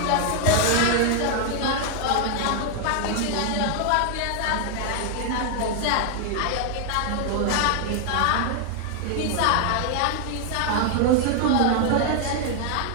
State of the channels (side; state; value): both; different; correlation 0.00